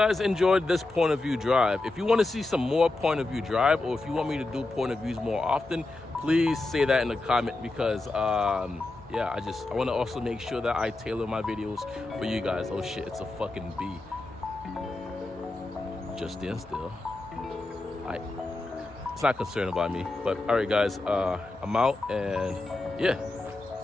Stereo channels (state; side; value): quieter; right; 3.0 dB